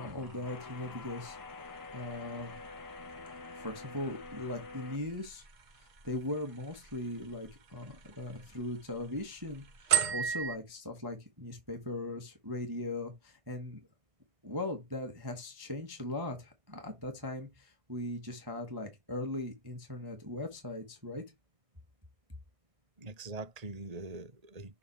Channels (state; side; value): late; left; 1.6 ms